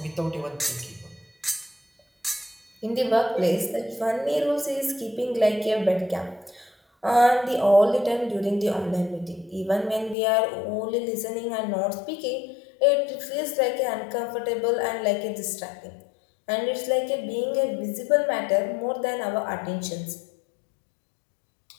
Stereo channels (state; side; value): drops out; right; at 10.2 s